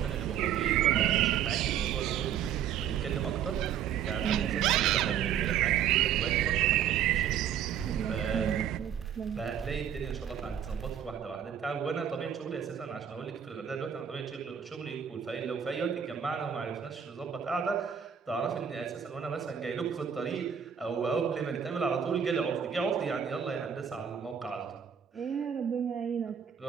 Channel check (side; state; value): left; quieter; 8.7 dB